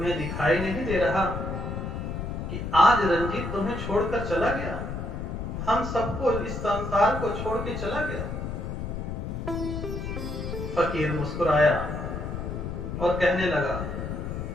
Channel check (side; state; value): left; noise; rumble, 5 dB below the sound